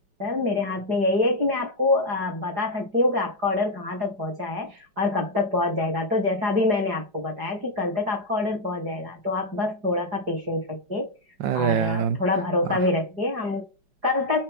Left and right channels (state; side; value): late; left; 5.6 ms